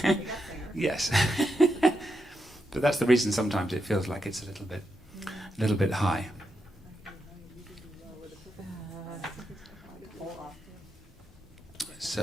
Yes. But that's the reason sometimes it feels like it's a little bit high.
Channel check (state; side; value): normal; both; correlation 0.84